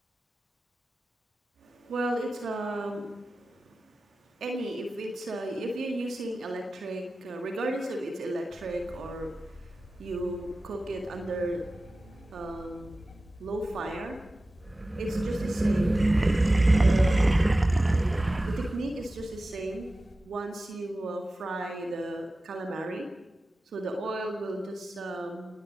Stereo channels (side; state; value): both; normal; correlation 0.95